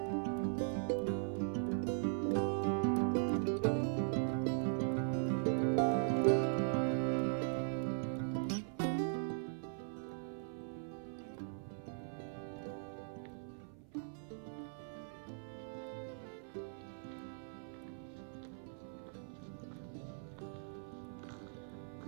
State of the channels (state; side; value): silent; left; 51 dB below the other